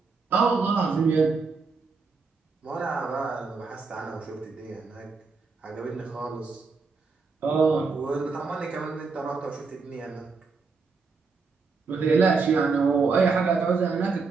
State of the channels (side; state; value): left; quieter; 4.6 dB